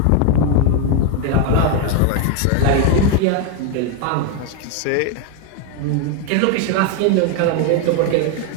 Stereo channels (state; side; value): different; both; correlation 0.01